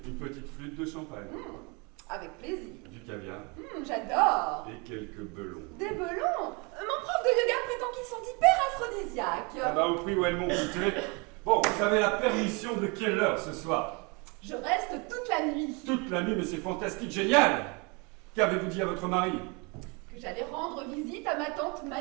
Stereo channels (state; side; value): quieter; left; 30.3 dB